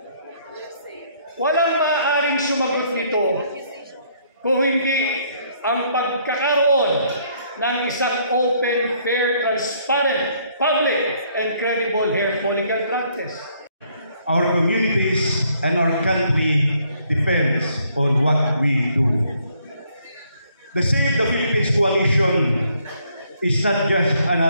Walang maaaring sumagot nito kung hindi ang pagkakaroon ng isang open, fair, transparent, public, and credible hair follicle drug test. Our communities and our country depends on what we do. The Save the Philippines Coalition is not just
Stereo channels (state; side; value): inverted; both; correlation -0.67